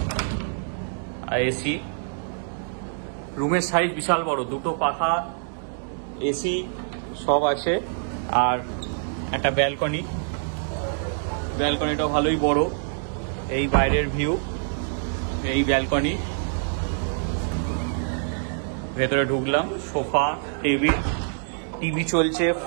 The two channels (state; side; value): silent; left; digital silence